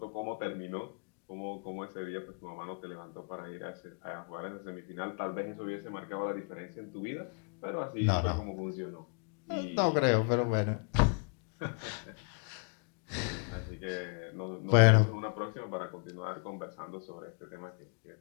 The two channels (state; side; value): quieter; right; 38.6 dB